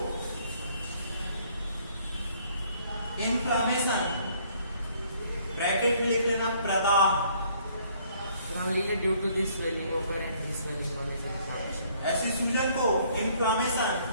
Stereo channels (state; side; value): inverted; both; correlation -0.62